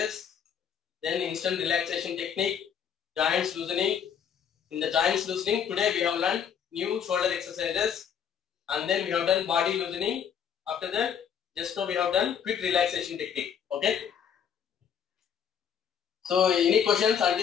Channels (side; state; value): right; quieter; 7.9 dB